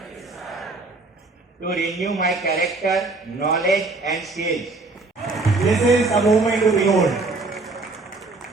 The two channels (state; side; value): quieter; left; 3.4 dB